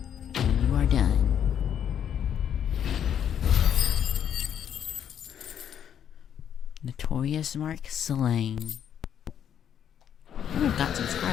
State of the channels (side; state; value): right; quieter; 9.1 dB